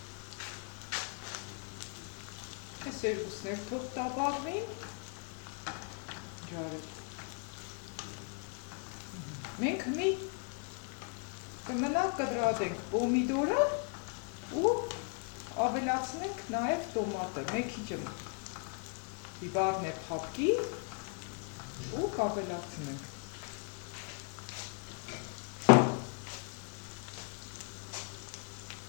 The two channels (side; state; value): right; quieter; 39.5 dB